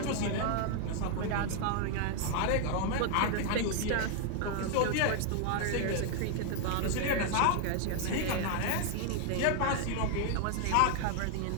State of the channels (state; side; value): different; both; correlation 0.00